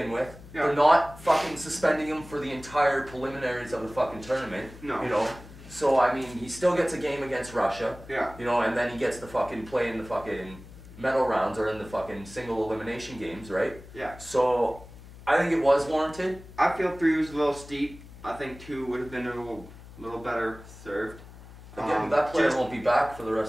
with. Yeah. They're not fucking suspending him for the entire preliminaries of the fucking tournament. No. You know? So, I mean, he still gets a game against Russia. Yeah. You know, and then he gets to fucking play in the fucking medal rounds or in the fucking single elimination games, right? Yeah. So, I think it was warranted. I feel 3 was a little steep. I think 2 would have been a little better served. Again, that player won't be back for the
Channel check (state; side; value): noise; left; hum, 18 dB below the sound